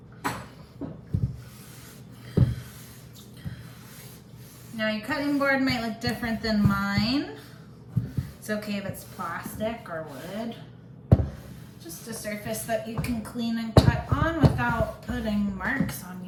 Now your cutting board might look different than mine. It's okay if it's plastic or wood. Just a surface that you can clean and cut on without putting marks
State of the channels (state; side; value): identical; both; correlation 1.00